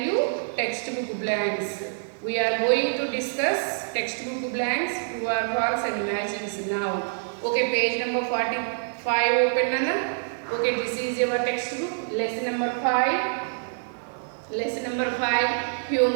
you textbook blanks. We are going to discuss textbook blanks, true or false and matchings now. Okay, page number 45 open Nana. Okay, this is your textbook, lesson number 5. Lesson number 5,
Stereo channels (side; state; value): left; silent; digital silence